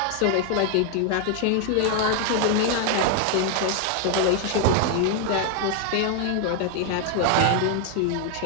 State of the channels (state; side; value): different; both; correlation 0.00